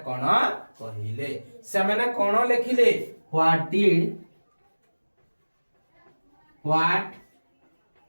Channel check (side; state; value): both; inverted; correlation -1.00